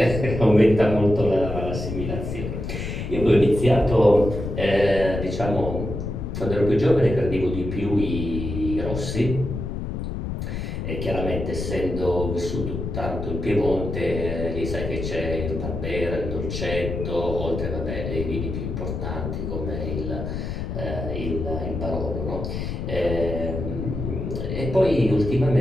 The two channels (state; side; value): noise; left; rumble, 4 dB below the sound